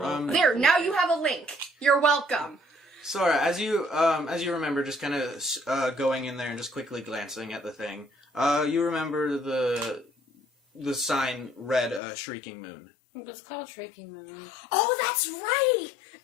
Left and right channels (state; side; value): drops out; right; at 12.0 s